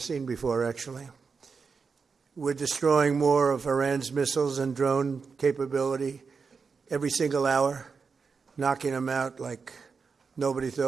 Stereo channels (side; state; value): left; quieter; 5.2 dB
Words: before, actually. We're destroying more of Iran's missiles and drone capability every single hour, knocking them out like nobody